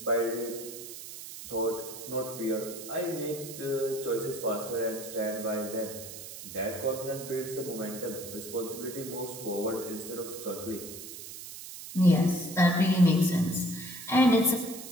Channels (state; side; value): noise; right; hiss, 11 dB below the sound